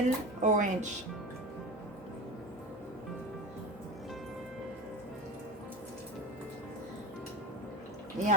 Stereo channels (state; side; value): normal; both; correlation 0.28